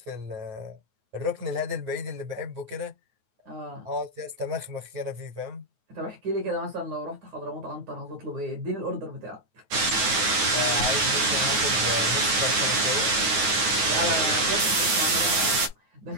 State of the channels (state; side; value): late; left; 9.4 ms